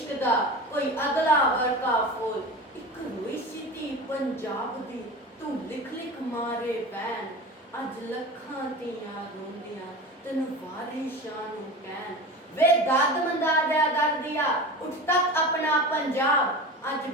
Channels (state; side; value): normal; both; correlation 0.31